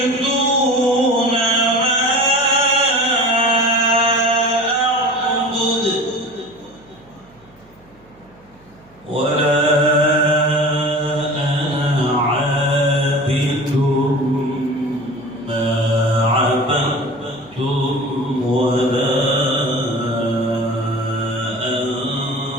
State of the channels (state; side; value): noise; right; hum, 30 dB below the sound